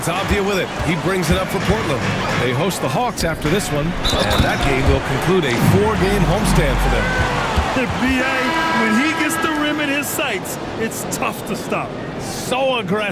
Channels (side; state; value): both; identical; correlation 1.00